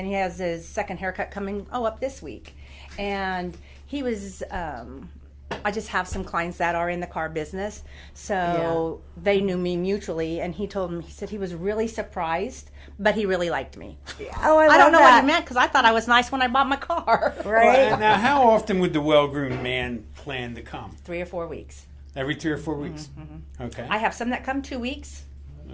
has his second haircut coming up this week. And he was, I just have some clients that are in the car business. So they knew me mutually. And he said he was really surprised, but he really liked me. Oh, I don't know that. what he meant, because I thought I was nice when I bought my car. Right? Well, now, how often would the well-groomed man plan to come? 3 or 4 weeks. Every 3 or 4 weeks. Okay. I have some that come 2 weeks.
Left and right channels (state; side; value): identical; both; correlation 1.00